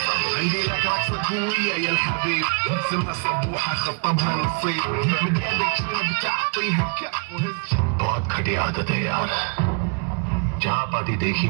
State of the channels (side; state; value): left; quieter; 37.8 dB